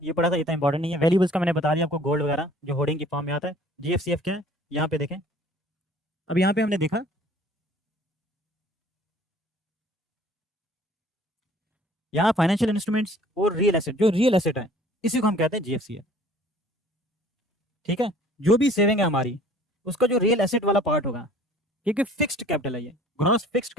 ये पढ़ा था, इतना इंपॉर्टेंट नहीं है। वैल्यूएबल्स का मैंने बता दिया आपको, गोल्ड वगैरह जो होर्डिंग की फॉर्म में आता है। GFCF क्या है यहाँ पे देखें। अब यहाँ पे हमने देखा यहाँ फाइनेंशियल इंस्ट्रूमेंट्स और रियल एसेट, जो रियल एसेट है इसी को हम कहते हैं GFCF। ठीक है, जो भी सेविंग है हमारी उसका जो रियल एसेट वाला पार्ट होगा, क्योंकि फिक्स्ड कैपिटल है ये। ग्रॉस फिक्स्ड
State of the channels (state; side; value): normal; both; correlation 0.52